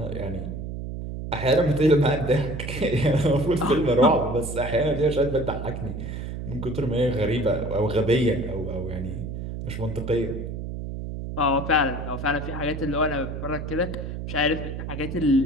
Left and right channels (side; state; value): right; noise; hum, 6 dB below the sound